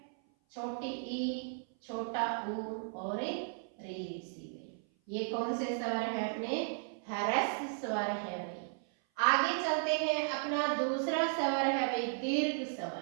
छोटी ई, छोटा ऊ और री सी। ये कौन से स्वर है? अपने ह्रस्व स्वर है भाई। आगे चलते हैं, अपना दूसरा स्वर है भाई दीर्घ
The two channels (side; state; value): left; silent; 54 dB below the other